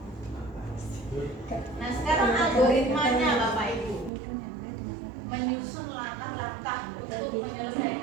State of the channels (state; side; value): drops out; left; at 4.1 s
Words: Nah sekarang algoritmanya Bapak Ibu, menyusun langkah-langkah untuk